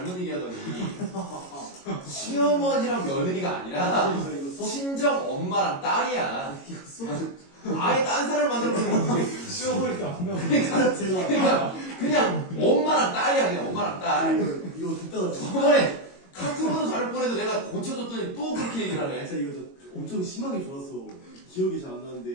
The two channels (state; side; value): late; right; 22 ms